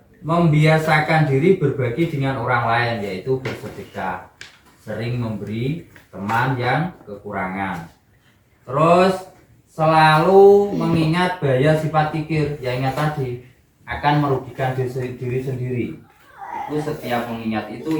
membiasakan diri berbagi dengan orang lain, yaitu bersedekah, sering memberi teman yang kekurangan. Terus selalu mengingat bahaya sifat kikir, yang ingat tadi akan merugikan diri sendiri. Itu setiap mengingat itu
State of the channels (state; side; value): identical; both; correlation 1.00